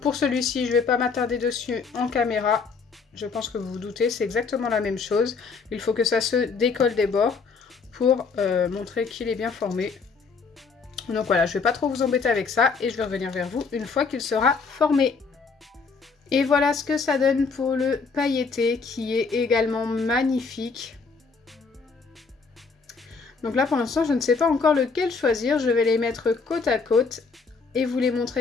celui-ci, je ne vais pas m'attarder dessus en caméra. Je pense que vous vous doutez, c'est exactement la même chose. Il faut que ça se décolle des bords pour montrer qu'il est bien formé. Donc voilà, je ne vais pas trop vous embêter avec ça et je vais revenir vers vous une fois qu'il sera formé. Et voilà ce que ça donne pour le pailleté qui est également magnifique. Donc là pour l'instant je ne sais pas encore lequel choisir, je vais les mettre côte à côte et vous les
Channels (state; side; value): quieter; right; 4.8 dB